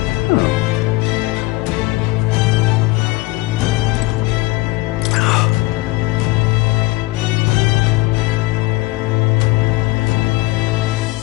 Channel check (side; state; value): right; quieter; 21.9 dB